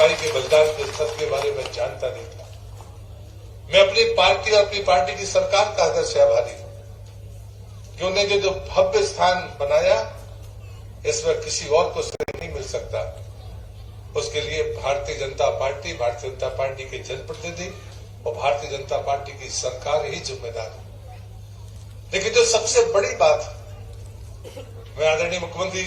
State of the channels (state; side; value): identical; both; correlation 1.00